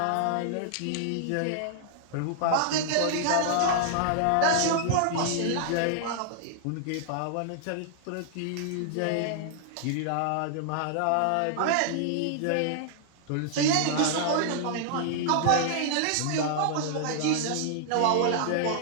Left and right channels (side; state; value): both; different; correlation -0.01